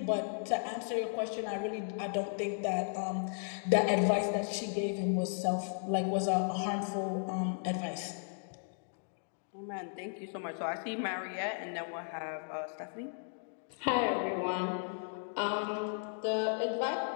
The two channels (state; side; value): silent; right; digital silence